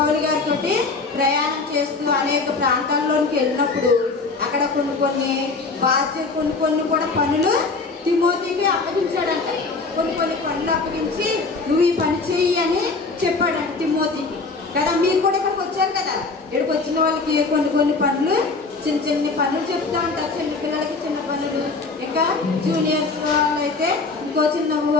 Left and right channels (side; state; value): right; quieter; 4.0 dB